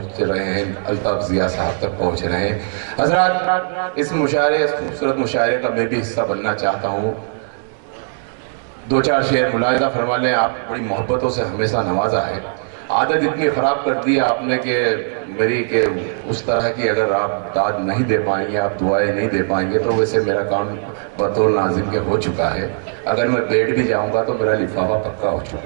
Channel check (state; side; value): silent; left; digital silence